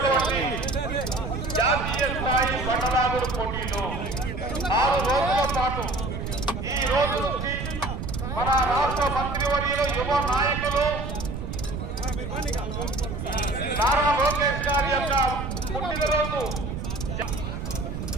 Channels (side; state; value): right; noise; rumble, 5 dB below the sound